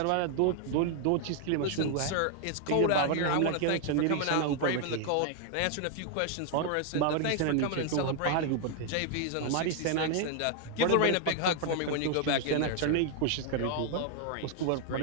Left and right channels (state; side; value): different; both; correlation 0.00